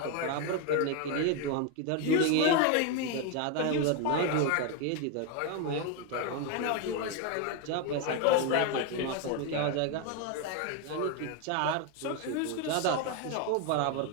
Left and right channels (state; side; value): different; both; correlation 0.02